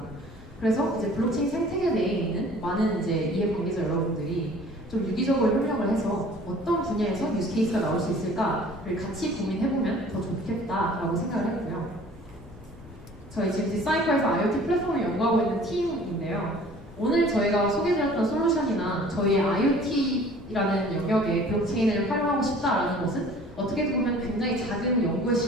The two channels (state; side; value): normal; both; correlation 0.49